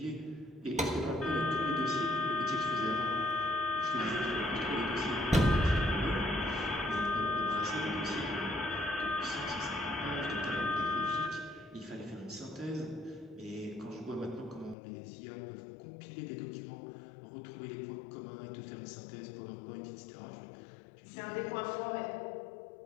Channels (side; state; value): right; drops out; at 14.8 s